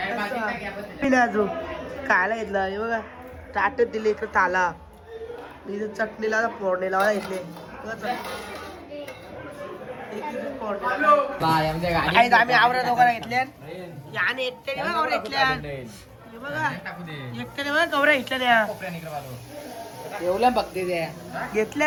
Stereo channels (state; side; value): identical; both; correlation 1.00